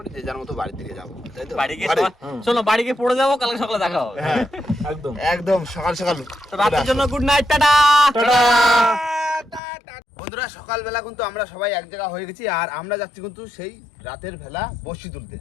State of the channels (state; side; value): drops out; right; at 9.6 s